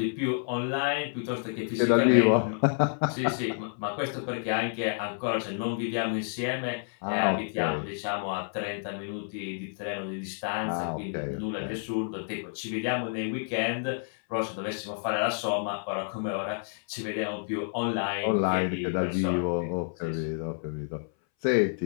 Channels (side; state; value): right; silent; 58 dB below the other